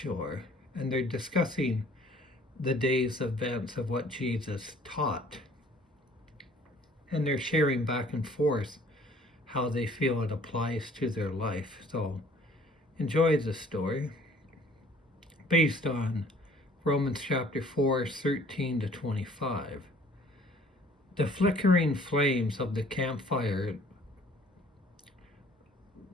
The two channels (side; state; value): both; normal; correlation 0.56